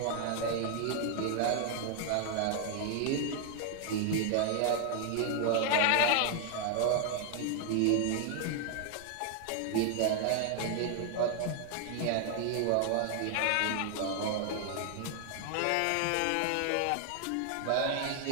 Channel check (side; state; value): both; different; correlation 0.00